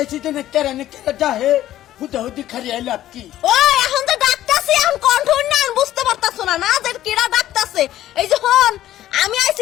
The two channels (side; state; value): right; quieter; 13.3 dB